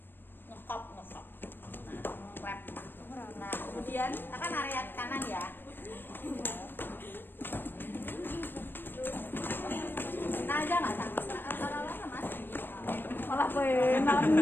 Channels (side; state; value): right; late; 0.096 ms